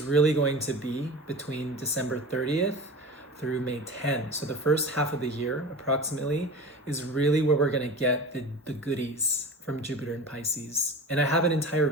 really going to be between December 30th through May 10. So the first half of the year, approximately, is really where we're going to get the goodies from Jupiter and Pisces. And I have an entire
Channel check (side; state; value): both; normal; correlation 0.33